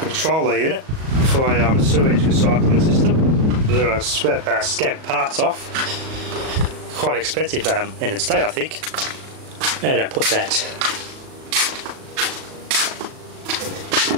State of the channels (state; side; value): late; left; 37 ms